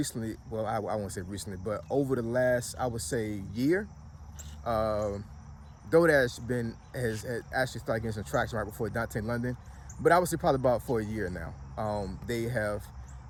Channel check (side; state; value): both; identical; correlation 1.00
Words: well, I won't say recently, but over the last, I would say, year, Dodash has actually started getting some traction right before Dontay London, but I would say probably about for a year now. They have